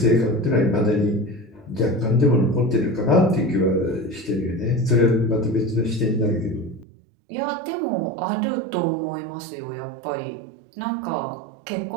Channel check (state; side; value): drops out; left; at 6.9 s